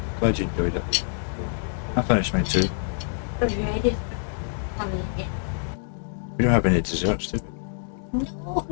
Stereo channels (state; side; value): silent; right; digital silence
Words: Glad you enjoyed it. I finished mine too. Are you ready for coming in? We don't have any desserts, do we? No.